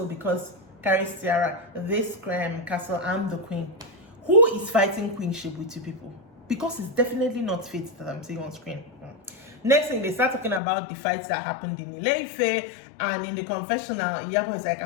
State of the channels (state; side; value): drops out; right; at 10.6 s